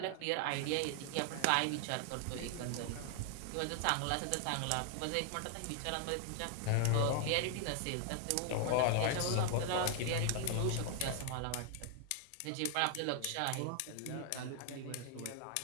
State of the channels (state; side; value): different; both; correlation 0.00